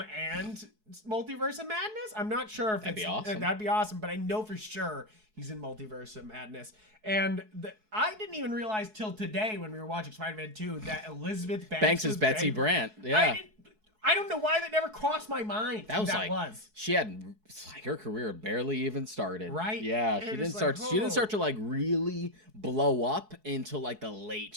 and Multiverse of Madness. I'm not sure if that'd be awesome. That'd be awesome, but I know for sure he's in Multiverse of Madness. And I didn't even realize till today when we were watching Spider-Man 2 that Elizabeth Banks is Betsy Brandt. Yeah. I don't know why that never crossed my mind. She had like her career barely even started. Right? Yeah, she didn't start to like really blow up until like the late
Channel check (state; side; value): late; left; 4.7 ms